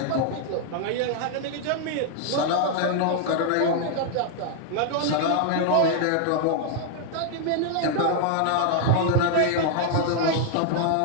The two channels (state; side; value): different; both; correlation 0.00